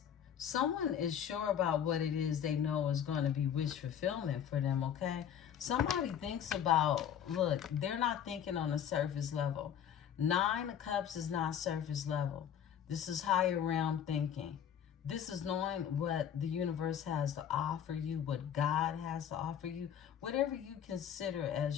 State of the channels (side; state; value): right; quieter; 9.0 dB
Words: Someone is sure about what it is they know is going to be wish fulfillment for them, okay? Somebody thinks about, look, they're not thinking on a surface level. Nine of Cups is not surface level. This is higher realm thinking. This is knowing what the universe has to offer you, what God has to offer you, whatever you consider